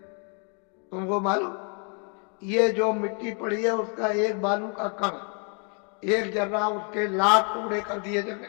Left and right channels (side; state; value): right; quieter; 38.6 dB